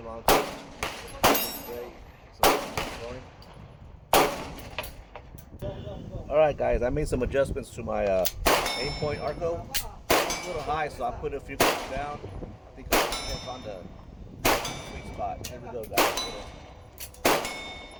Great. Alright guys, I made some adjustments to my Aimpoint Arco. It's a little high, so I put a few clicks down. I think I found the sweet spot. Here we go guys.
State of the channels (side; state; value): both; identical; correlation 1.00